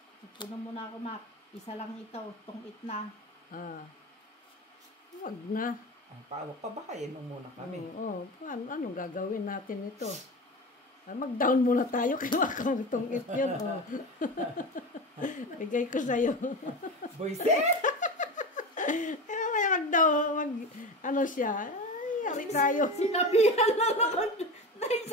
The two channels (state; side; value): normal; both; correlation 0.26